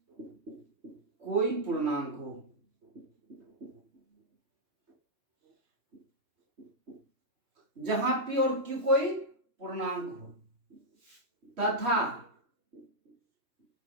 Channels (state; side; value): late; left; 3.2 ms